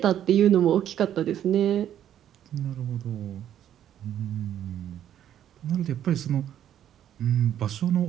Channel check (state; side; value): quieter; left; 10.7 dB